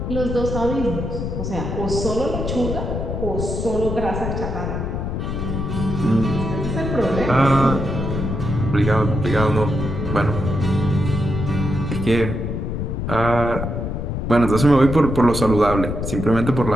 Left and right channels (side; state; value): left; noise; rumble, 3 dB below the sound